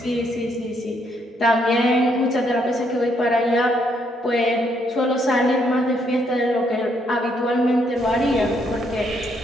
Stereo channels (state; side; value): normal; both; correlation 0.72